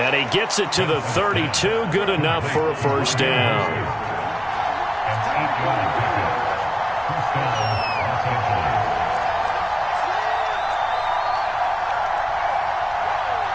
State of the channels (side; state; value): both; identical; correlation 1.00